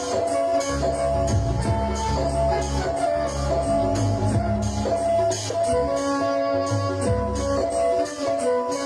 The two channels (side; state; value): both; identical; correlation 1.00